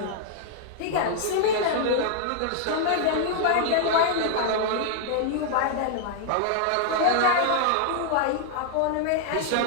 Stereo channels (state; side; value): different; both; correlation -0.01